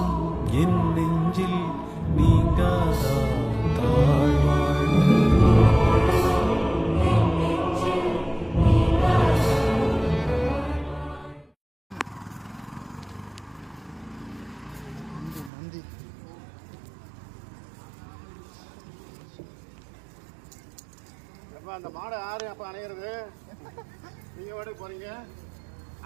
என் நெஞ்சில் நீங்காதா தாழ் வாழ்க. அந்த மாடை யாரு அப்ப அணையிறது? நீங்க வாடகைக்கு போறீங்க,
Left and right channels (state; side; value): drops out; left; at 15.5 s